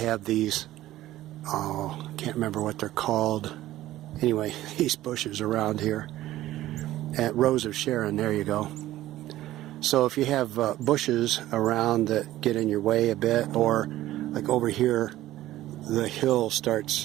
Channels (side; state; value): left; quieter; 15.0 dB